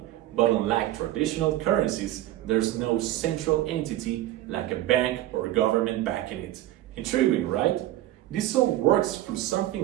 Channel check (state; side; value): quieter; left; 14.6 dB